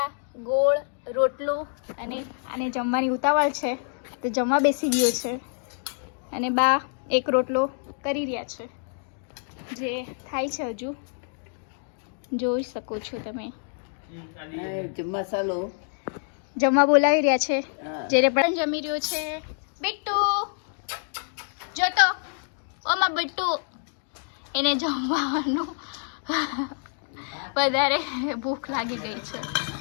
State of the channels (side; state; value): right; silent; 60 dB below the other